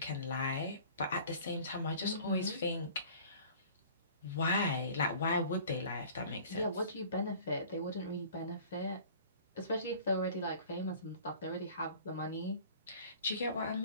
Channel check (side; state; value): both; inverted; correlation -0.47